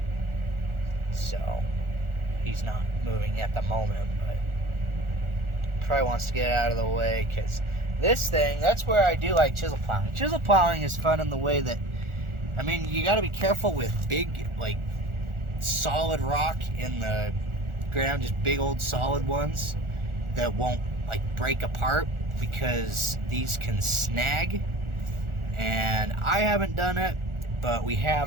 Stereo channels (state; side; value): late; left; 1.4 ms